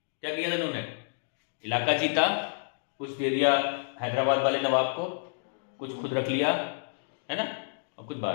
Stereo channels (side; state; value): right; silent; digital silence